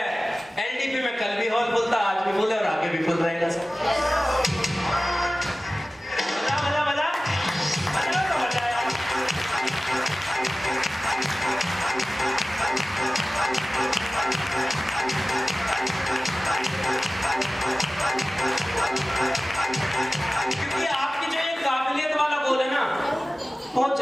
एलडीपी में कल भी हॉल फुल था, आज भी फुल है और आगे भी फुल रहेगा सर। मजा मजा मजा मजा तो मजा आया। क्योंकि आपकी जो ये काबिलियत वाला गोल है ना, बहुत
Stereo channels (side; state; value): both; normal; correlation 0.97